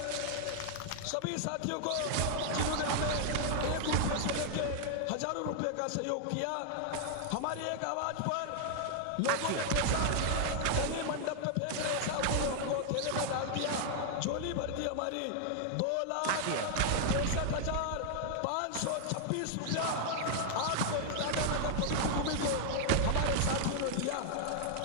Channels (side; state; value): both; different; correlation 0.00